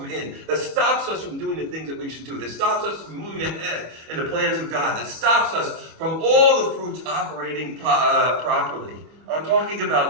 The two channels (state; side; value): late; left; 25 ms